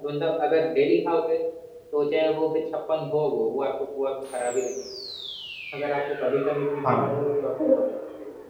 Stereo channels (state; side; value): identical; both; correlation 1.00